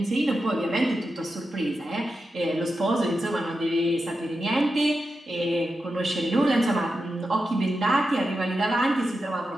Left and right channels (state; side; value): normal; both; correlation 0.89